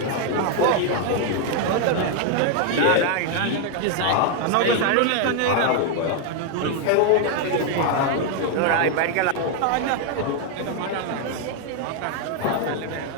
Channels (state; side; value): different; both; correlation 0.00